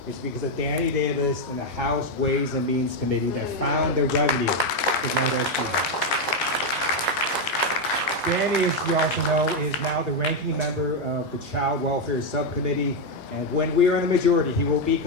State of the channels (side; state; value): both; normal; correlation 0.04